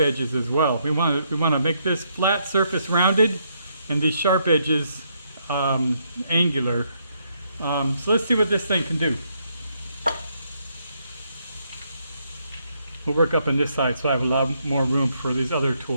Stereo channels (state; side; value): inverted; both; correlation -0.75